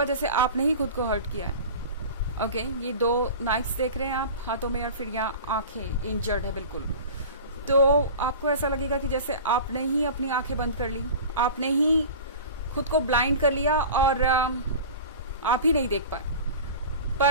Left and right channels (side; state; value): both; inverted; correlation -0.36